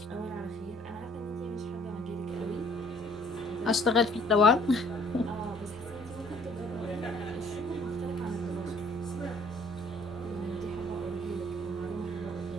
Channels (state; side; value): normal; both; correlation 0.58